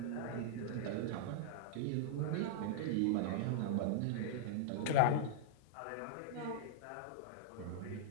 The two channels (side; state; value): both; different; correlation -0.02